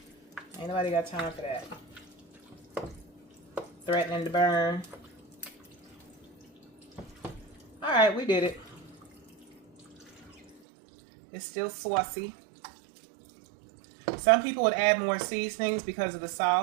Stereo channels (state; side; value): drops out; left; at 10.6 s